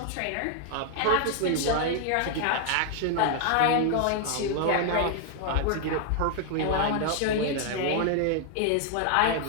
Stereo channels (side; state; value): both; different; correlation 0.00